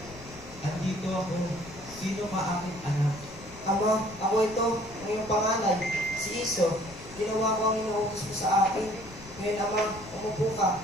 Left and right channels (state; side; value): noise; left; rumble, 18 dB below the sound